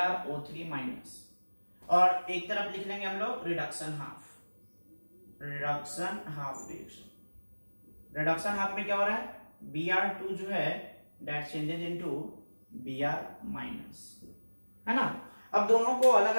माइनस, और एक तरफ लिख लेंगे हम लोग reduction half reaction. Reduction half में क्या हो रहा है, Br2 जो है that changes into Br minus, है ना। अब दोनों को अलग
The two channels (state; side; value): inverted; both; correlation -1.00